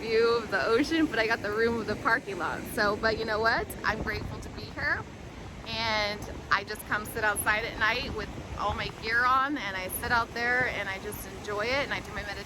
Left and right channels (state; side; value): identical; both; correlation 1.00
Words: of the ocean, but I got the room with the parking lot. So, but you know what? I'm grateful to be here, and I just come sit outside at night with all my gear on, and I sit out there and I just enjoy it, and I do my